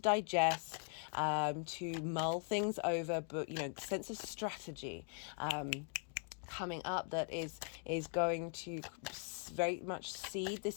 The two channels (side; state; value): right; silent; 51 dB below the other